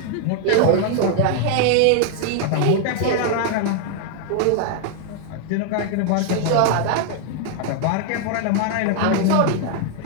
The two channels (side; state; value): both; different; correlation 0.00